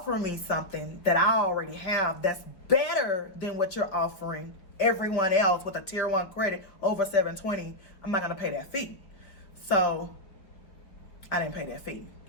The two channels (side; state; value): right; late; 4.8 ms